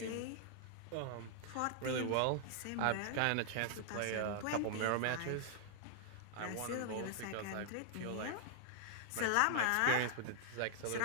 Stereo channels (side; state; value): both; different; correlation 0.00